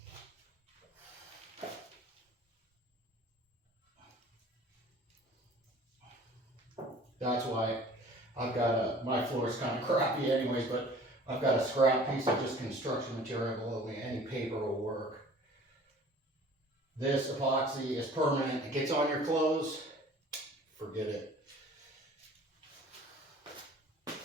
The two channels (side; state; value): both; normal; correlation 0.48